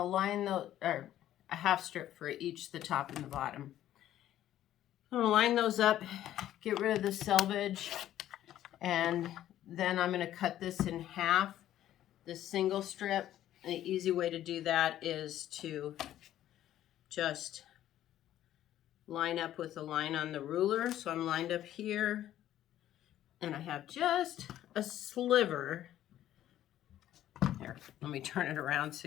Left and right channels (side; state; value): right; quieter; 12.5 dB